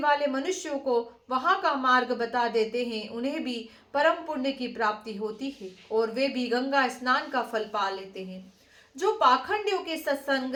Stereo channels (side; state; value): both; identical; correlation 1.00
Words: मनुष्यों को वहां का मार्ग बता देते हैं उन्हें भी परम पुण्य की प्राप्ति होती है और वे भी गंगा स्नान का फल पा लेते हैं। जो पाखंडियों के सत्संग